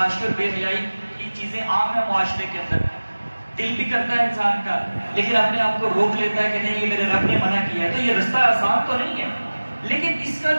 اور بے حیائی کی چیزیں عام ہیں معاشرے کے اندر، دل بھی کرتا ہے انسان کا، لیکن اپنے آپ کو روک لیتا ہے کہ نہیں یہ میرے رب نے منع کیا ہے. تو یہ رستہ آسان تو نہیں ہے، لیکن اس کا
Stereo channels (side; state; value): both; inverted; correlation -1.00